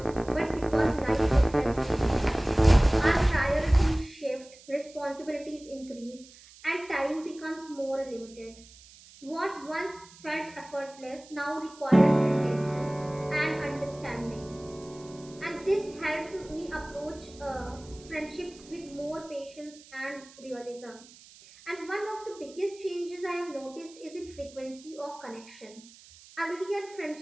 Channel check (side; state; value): right; noise; hiss, 22 dB below the sound